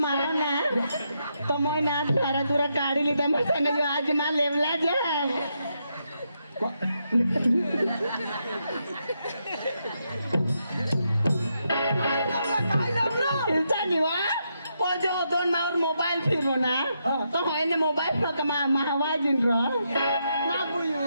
मारो ना तो मग ना धारा तुरा काढी लिहिता मग आज मा लेवला जा जो दोन मावर मोबाईल फिरलो ना तो होय ना मोबाईल फक्त महावाजीन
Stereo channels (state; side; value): inverted; both; correlation -0.81